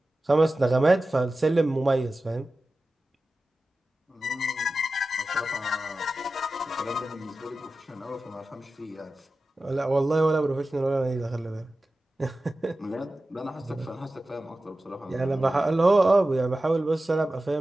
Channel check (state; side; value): normal; both; correlation 0.94